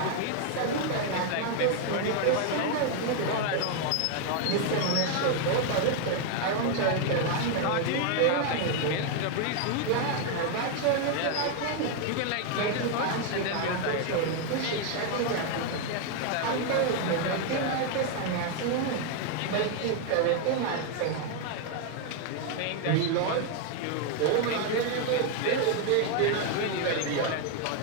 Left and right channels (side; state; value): both; different; correlation 0.01